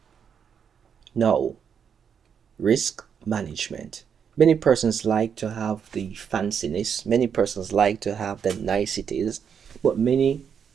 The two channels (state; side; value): quieter; left; 7.4 dB